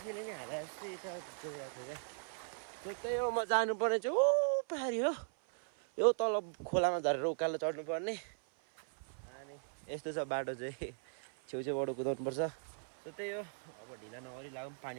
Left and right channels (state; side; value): silent; left; 52 dB below the other